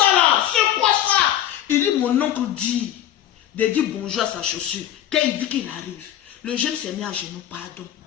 là? C'est quoi ça? Il dit, mon oncle dit, de dire bonjour à sa chaussure. Quand il dit qu'il arrive, le jeune s'est mis à genoux, pardon.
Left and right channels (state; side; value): quieter; right; 11.7 dB